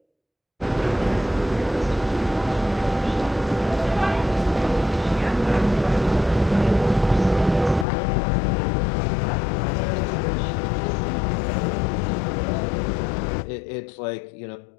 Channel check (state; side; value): drops out; right; at 7.9 s